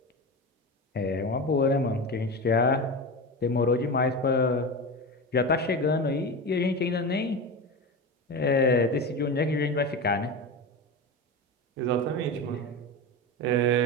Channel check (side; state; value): both; normal; correlation 0.23